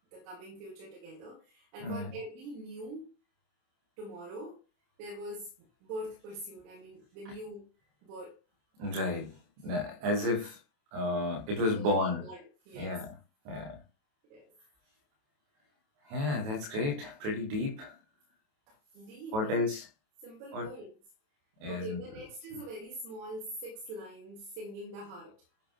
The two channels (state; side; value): late; left; 28 ms